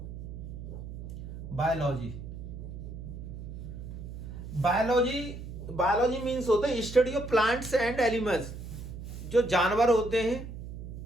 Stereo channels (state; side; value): noise; right; hum, 10 dB below the sound